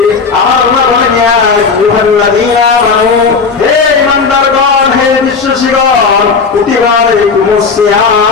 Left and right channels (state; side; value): quieter; right; 5.0 dB